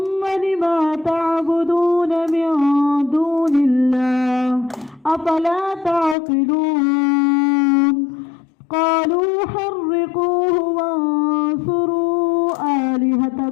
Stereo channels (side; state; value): right; drops out; at 6.2 s